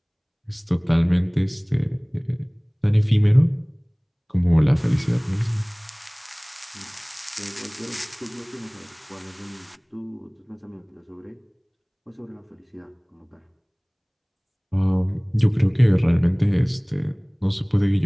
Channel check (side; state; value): both; identical; correlation 1.00